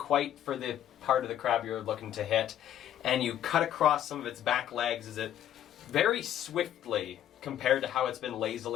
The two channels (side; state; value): right; quieter; 11.1 dB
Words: for the part of the crab you're looking to hit, and you cut across some of its back legs as it very swiftly, compared to how it's been